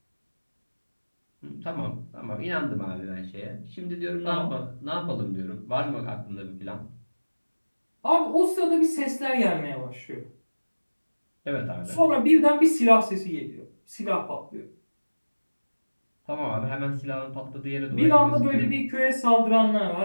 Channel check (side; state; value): both; inverted; correlation -1.00